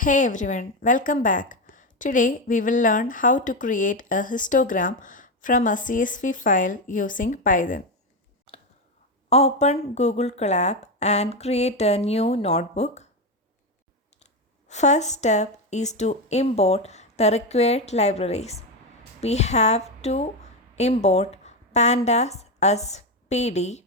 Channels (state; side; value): normal; both; correlation 0.12